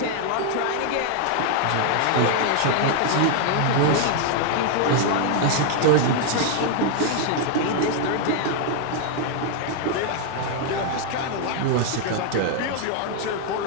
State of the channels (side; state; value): both; different; correlation 0.00